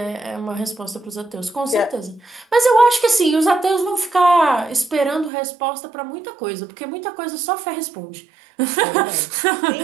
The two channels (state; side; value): drops out; left; at 5.3 s